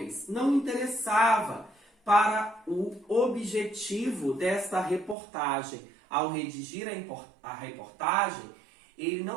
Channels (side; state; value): left; drops out; at 5.2 s